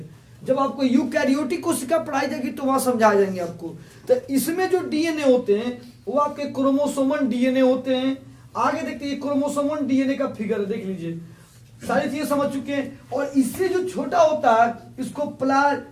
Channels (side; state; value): both; identical; correlation 1.00